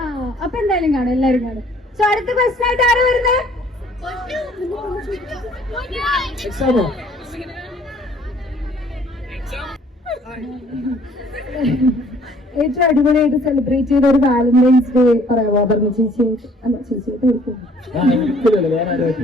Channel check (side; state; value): both; normal; correlation 0.58